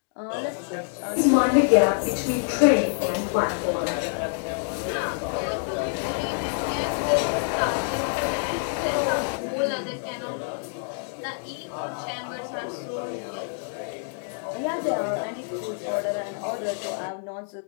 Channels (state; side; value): silent; right; digital silence